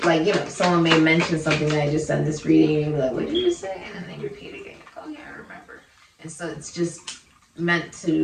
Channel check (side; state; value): both; identical; correlation 1.00